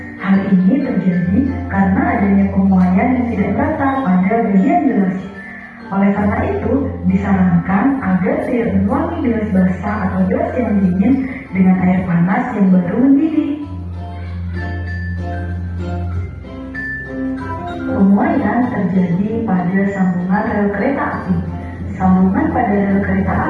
Hal ini terjadi karena adanya pemuaian yang tidak rata pada bagian gelas. Oleh karena itu, disarankan agar tidak menuangi gelas basah atau gelas yang dingin dengan air panas yang baru mendidih. Pemuaian terjadi pada sambungan rel kereta api. Sambungan pada rel kereta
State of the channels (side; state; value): both; identical; correlation 1.00